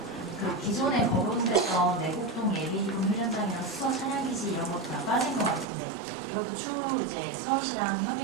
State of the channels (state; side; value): drops out; left; at 5.7 s